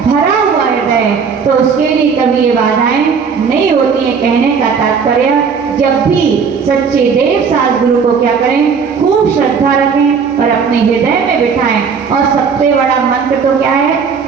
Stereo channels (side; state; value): left; quieter; 6.0 dB